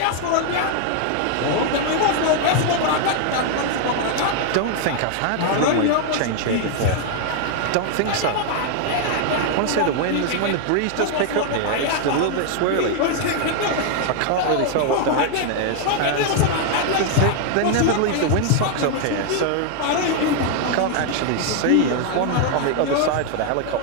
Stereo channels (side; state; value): both; different; correlation 0.00